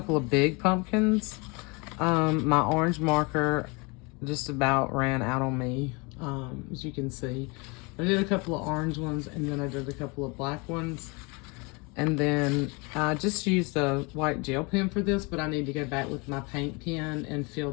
of big pumpkins. My orange marker just about ran out on me, as you can see. I did a couple of orange ones, and then I did a couple of black ones. And then I just used a white gel pen for this, but I need to go back with my paint pen and fill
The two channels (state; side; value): quieter; right; 29.0 dB